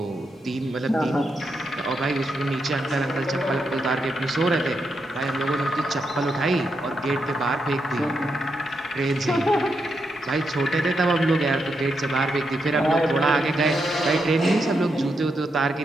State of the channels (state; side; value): normal; both; correlation 0.83